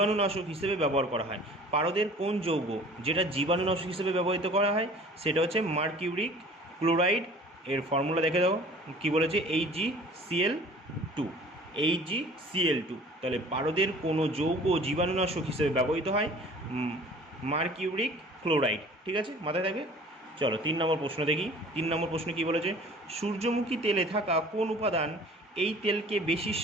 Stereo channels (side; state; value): both; normal; correlation 0.47